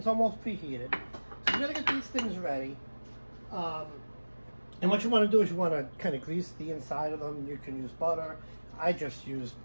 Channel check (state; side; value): inverted; both; correlation -1.00